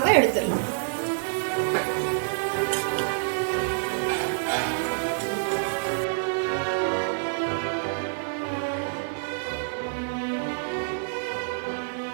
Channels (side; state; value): left; silent; 60 dB below the other